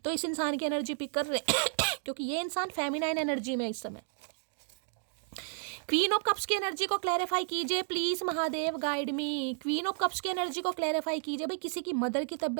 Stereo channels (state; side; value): silent; left; digital silence